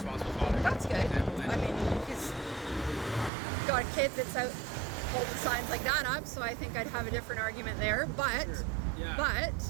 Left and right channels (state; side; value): drops out; left; at 3.3 s